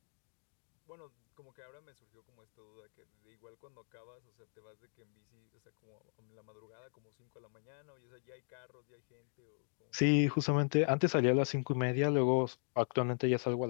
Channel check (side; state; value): right; silent; digital silence